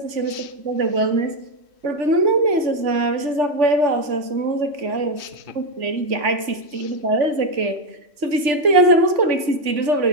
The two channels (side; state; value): left; late; 3.4 ms